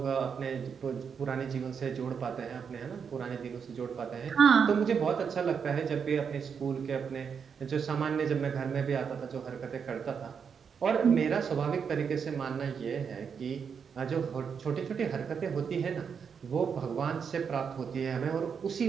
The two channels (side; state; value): left; quieter; 6.6 dB